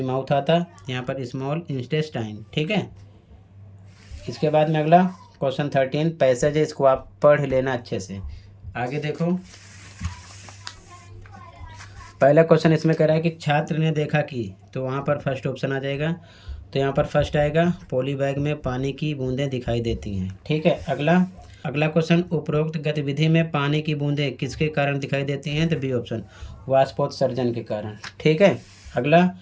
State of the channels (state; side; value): identical; both; correlation 1.00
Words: माउथ आता, यहाँ पर स्मॉल इंटेस्टाइन। ठीक है, इसके बाद में अगला क्वेश्चन 13 पैसेज है, इसको आप पढ़ लेना अच्छे से। आगे देखो, पहला क्वेश्चन इसमें कह रहा है कि छात्र ने देखा कि, तो वहाँ पर फर्स्ट ऑप्शन आ जाएगा। तो यहाँ पर फर्स्ट आएगा, पॉली बैग में पानी की बूंदें दिखाई देती हैं। ठीक है, अगला, अगला क्वेश्चन, उपरोक्त गतिविधि में पानी की बूंदें किसके कारण दिखाई देती हैं? तो बी ऑप्शन, वाष्पोत्सर्जन के कारण। ठीक है। अगला,